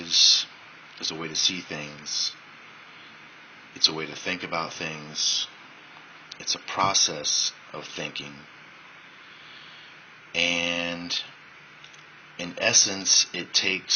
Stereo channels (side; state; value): both; identical; correlation 1.00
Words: is a way to see things. It's a way to think about things. It's a process of thinking. And in essence, it